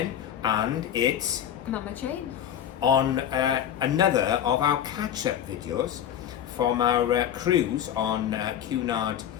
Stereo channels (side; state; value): right; quieter; 10.1 dB